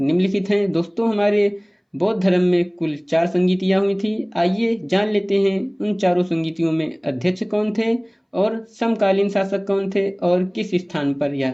निम्नलिखित हैं। दोस्तों, हमारे बौद्ध धर्म में कुल 4 संगीतियाँ हुई थी। आइए जान लेते हैं उन चारों संगीतियों में अध्यक्ष कौन थे और समकालीन शासक कौन थे और किस स्थान पर यह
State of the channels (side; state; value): both; identical; correlation 1.00